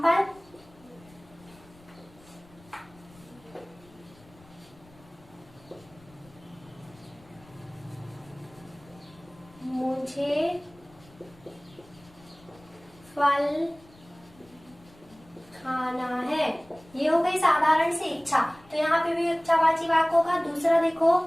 मुझे फल खाना है, ये हो गई साधारण सी इच्छा, तो यहाँ पे भी इच्छावाची वाक्य होगा। दूसरा देखो,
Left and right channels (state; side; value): noise; left; rumble, 26 dB below the sound